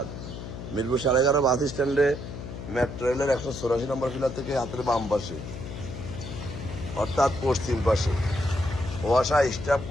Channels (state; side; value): noise; left; hum, 9 dB below the sound